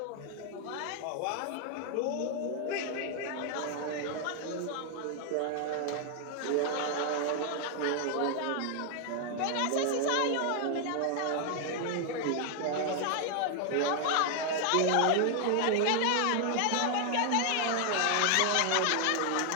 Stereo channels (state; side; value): different; both; correlation 0.00